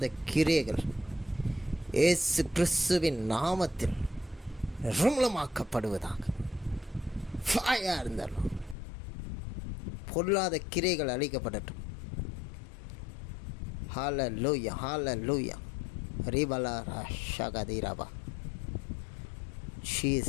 கிரியைகள் இயேசு கிறிஸ்துவின் நாமத்தில் நிர்மூலமாக்கப்படுவதாக. ஃபயர் இருந்தாலும் பொல்லாத கிரைகள் அழிக்கப்படட்டும். Hallelujah, hallelujah. ரிபலா ரஷகதிரபா.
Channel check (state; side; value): drops out; right; at 8.8 s